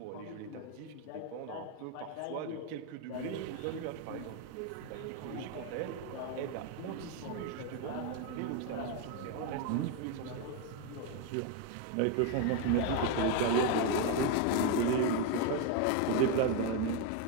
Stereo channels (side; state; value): both; different; correlation 0.02